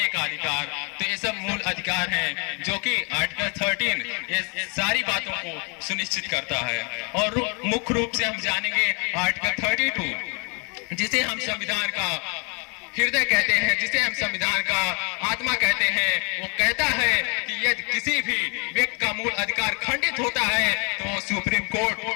का अधिकार, तो ये सब मूल अधिकार हैं जो कि आर्टिकल 13 ये सारी बातों को सुनिश्चित करता है। और मुख्य रूप से हम जानेंगे आर्टिकल 32, जिसे हम संविधान का हृदय कहते हैं, जिसे हम संविधान का आत्मा कहते हैं। वो कहता है कि यदि किसी भी व्यक्ति का मूल अधिकार खंडित होता है तो सुप्रीम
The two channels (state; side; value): quieter; right; 34.9 dB